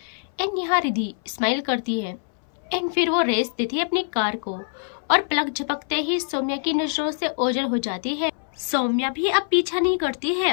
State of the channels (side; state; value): right; silent; 60 dB below the other